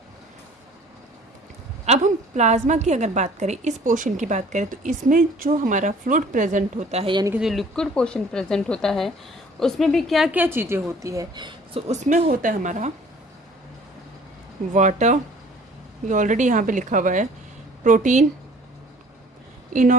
अब हम प्लाज्मा की अगर बात करें, इस पोर्शन की बात करें, तो इसमें जो हमारा फ्लूइड प्रेजेंट होता है यानी कि जो लिक्विड पोर्शन प्रेजेंट होता है, उसमें भी क्या क्या चीज़ें होती है। सो उसमें होता है हमारा वाटर, ये ऑलरेडी यहाँ पे लिखा हुआ है, protein,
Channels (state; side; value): normal; both; correlation 0.52